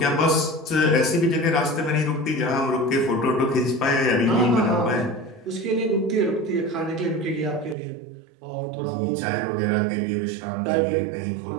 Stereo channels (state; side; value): drops out; left; at 7.8 s